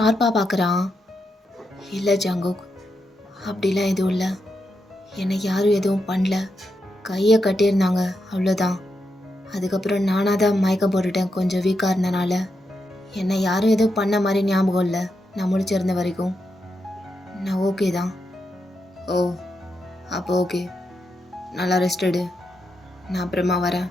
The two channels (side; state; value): both; normal; correlation 0.84